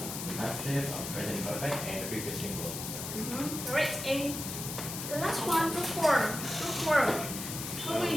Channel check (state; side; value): noise; left; hiss, 6 dB below the sound